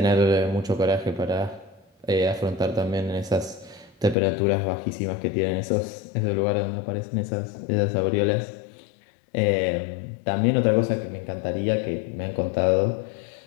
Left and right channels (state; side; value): drops out; right; at 4.2 s